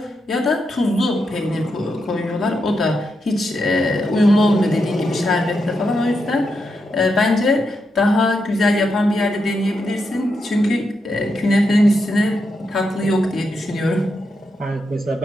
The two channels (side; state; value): both; normal; correlation 0.84